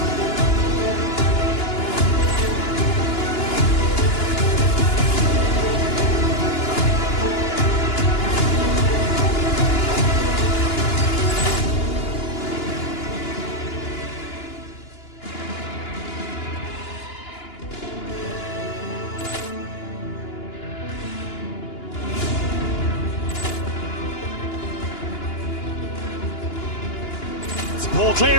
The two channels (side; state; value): right; late; 2.9 ms